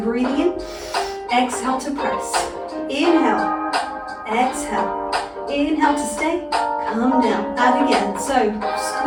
in, exhale to press. Inhale, exhale. Inhale to stay, come down. Add again. So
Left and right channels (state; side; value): identical; both; correlation 1.00